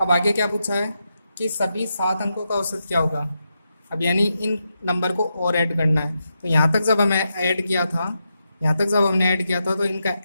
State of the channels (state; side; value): inverted; both; correlation -0.86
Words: आगे क्या पूछा है कि सभी 7 अंकों का औसत क्या होगा। अब यानी इन नंबर को और ऐड करना है, तो यहाँ तक जब हमें ऐड किया था, यहाँ तक जब हमने ऐड किया था तो इनका